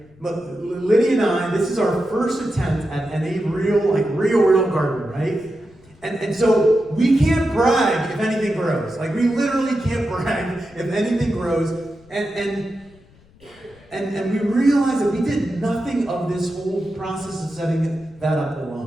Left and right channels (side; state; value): left; noise; rumble, 28 dB below the sound